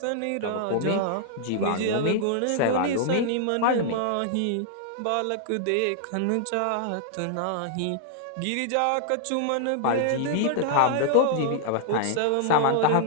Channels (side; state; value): both; different; correlation -0.01